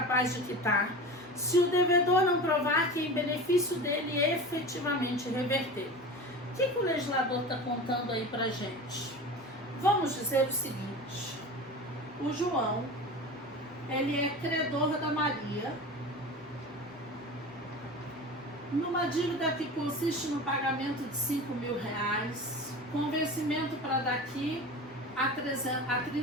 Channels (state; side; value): normal; both; correlation 0.32